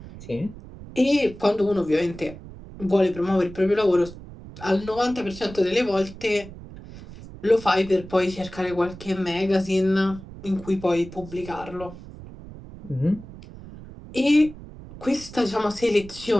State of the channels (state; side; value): noise; right; rumble, 16 dB below the sound